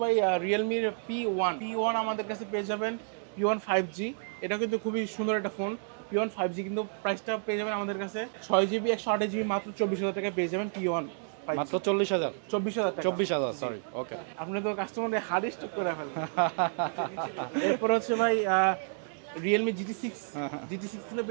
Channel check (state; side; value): silent; left; digital silence